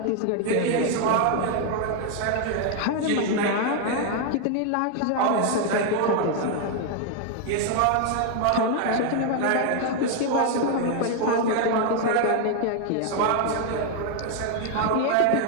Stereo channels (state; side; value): different; both; correlation 0.00